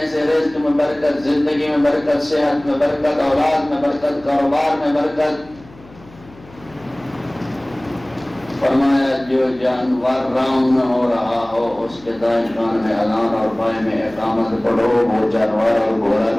سے رزق میں برکت، زندگی میں برکت، صحت میں برکت، اولاد میں برکت، کاروبار میں برکت۔ فرمایا جو جانور راؤنڈ ہو رہا ہو اس کے دائیں کان میں اذان اور بائیں میں اقامت پڑھو، وہ جانور اور گھوڑا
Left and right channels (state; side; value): noise; left; hum, 23 dB below the sound